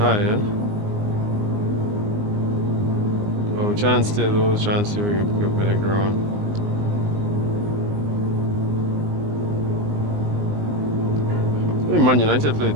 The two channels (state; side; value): late; left; 19 ms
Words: yeah? But we're trying to stay low, trying to see if we can pick up with the ground. I think Man United played